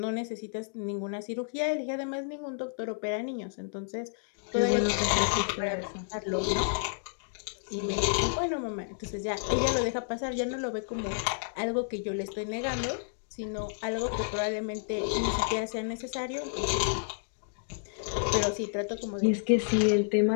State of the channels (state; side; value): silent; right; digital silence